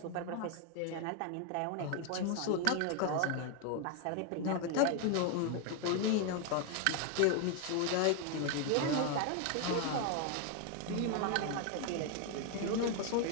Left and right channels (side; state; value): both; different; correlation 0.01